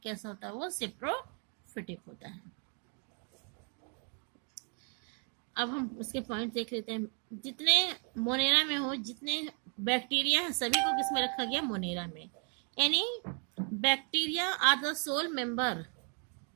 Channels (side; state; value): left; quieter; 39.7 dB